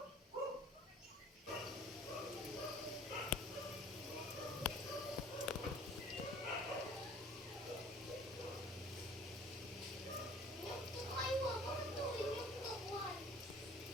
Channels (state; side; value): normal; both; correlation 0.50